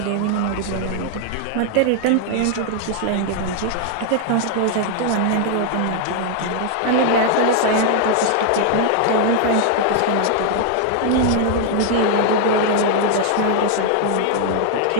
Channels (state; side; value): different; both; correlation 0.00